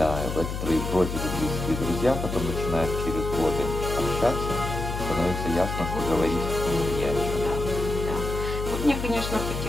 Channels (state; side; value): noise; left; hum, 4 dB below the sound